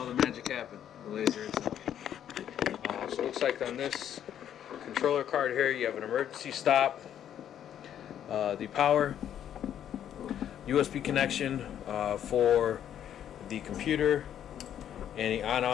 the magic happen, the laser itself. So it looks like on this controller card here you have an emergency stop, the power, USB connection for the computer, and the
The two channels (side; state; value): right; quieter; 10.1 dB